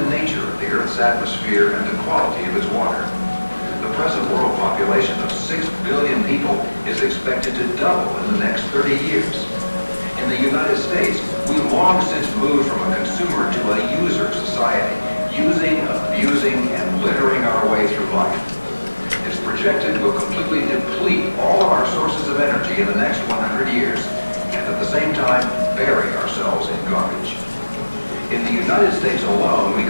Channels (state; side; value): inverted; both; correlation -1.00